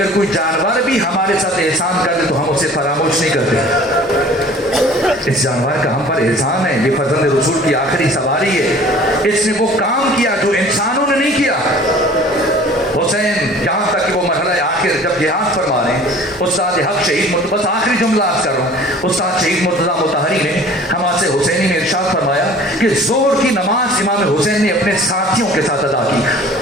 कोई जानवर भी हमारे साथ एहसान कर दे तो हम उसे फरामोश नहीं करते। इस जानवर का हम पर एहसान है, ये फर्जंद रसूल की आखिरी सवारी है। इसने वो काम किया जो इंसानों ने नहीं किया। हुसैन यहाँ तक कि वो मरहला आखिर जब जिहाद फरमा रहे हैं, उस्ताद हक शहीद, बस आखिरी जुमला आज कर रहा हूँ, उस्ताद शहीद मुर्तज़ा मुतहरी ने हमासे हुसैनी में इरशाद फरमाया कि जोहर की नमाज इमाम हुसैन ने अपने साथियों के साथ अदा की,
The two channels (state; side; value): normal; both; correlation 0.48